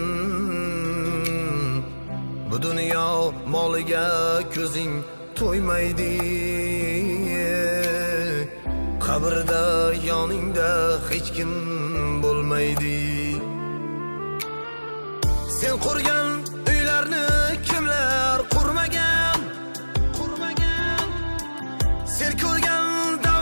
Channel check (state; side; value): inverted; both; correlation -1.00